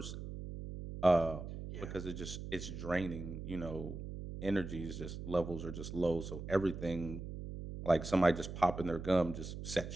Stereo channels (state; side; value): noise; right; hum, 8 dB below the sound